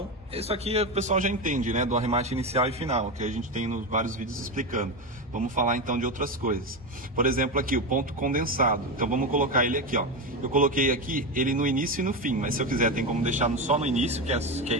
isso aqui o pessoal já entende, né? Do arremate inicial e final, que a gente tem nos vários vídeos explicando. Vamos falar então de outras coisas. Por exemplo, aqui o ponto condensado. Então vamos colocar ele aqui, ó. Eu coloquei aqui ele no início e no fim, mas se eu quiser tem como deixar só no início, que é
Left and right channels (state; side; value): normal; both; correlation 0.15